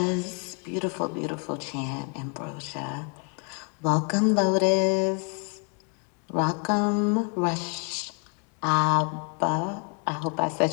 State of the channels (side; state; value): right; quieter; 37.9 dB